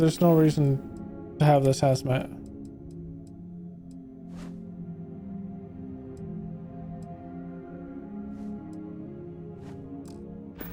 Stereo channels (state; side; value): identical; both; correlation 1.00